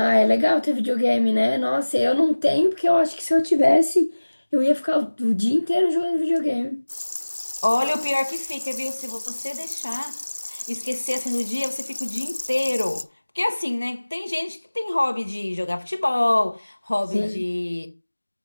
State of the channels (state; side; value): inverted; both; correlation -1.00